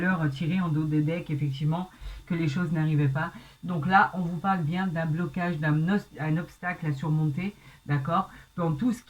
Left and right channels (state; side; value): identical; both; correlation 1.00